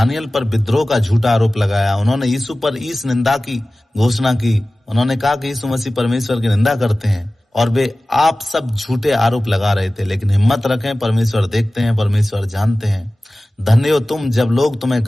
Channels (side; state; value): both; normal; correlation 0.97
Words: पर विद्रोह का झूठा आरोप लगाया, उन्होंने यीशु पर ईश निंदा की घोषणा की, उन्होंने कहा कि यीशु मसीह परमेश्वर की निंदा करते हैं, और वे आप सब झूठे आरोप लगा रहे थे। लेकिन हिम्मत रखें, परमेश्वर देखते हैं, परमेश्वर जानते हैं। धन्य हो तुम जब लोग तुम्हें